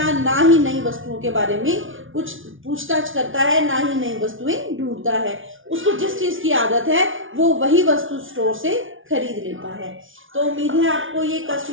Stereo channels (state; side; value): late; left; 0.57 ms